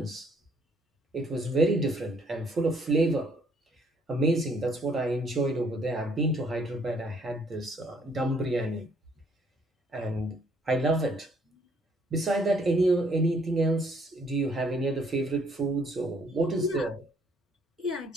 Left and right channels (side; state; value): both; normal; correlation 0.65